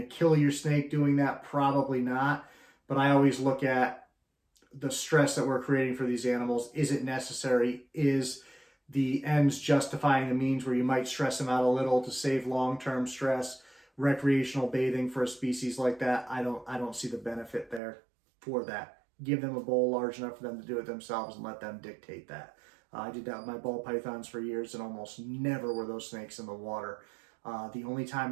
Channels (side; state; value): left; drops out; at 17.8 s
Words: to kill your snake doing that? Probably not. But I always look at the stress that we're creating for these animals. Is it necessary? Is the ends justifying the means, where you might stress them out a little to save long-term stress? Recreational bathing for a species like that, I don't see the benefit there for that. Give them a bowl large enough for them to do it themselves and let them dictate that. I did that with my ball pythons for years, and almost never were those snakes in the water. The only time